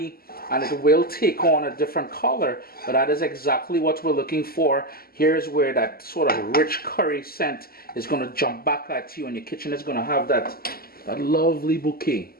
and it will take on a different color, but that is exactly what we're looking for. Here's where that sort of rich curry scent is going to jump back at you, and your kitchen is going to have that lovely bouquet.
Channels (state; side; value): late; right; 0.44 ms